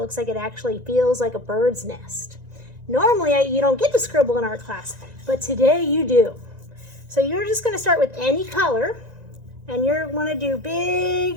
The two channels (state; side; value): late; left; 1.9 ms